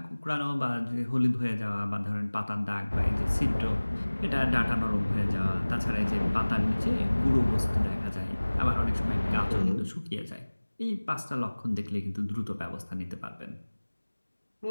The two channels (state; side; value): inverted; both; correlation -1.00